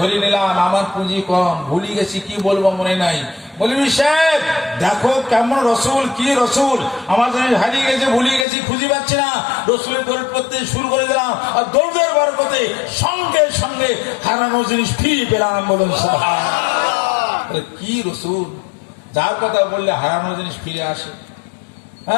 নিলাম, আমার পুঁজি কম, ভুলে গেছি কি বলবো মনে নাই। মৌলভী সাহেব দেখো কেমন রসুল, কি রসুল আমার জিনিস হারিয়ে গেছে, ভুলে গেছি, খুঁজে পাচ্ছি না। রসুলের দৌড় করতে শুরু করে দিলাম আর দৌড়ের বরকতে সঙ্গে সঙ্গে হারানো জিনিস ফিরে পেলাম। বলুন সুবহানাল্লাহ। কি রসুল, যার কথা বললে হারানো জিনিস ফিরে আসে।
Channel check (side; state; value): right; drops out; at 8.5 s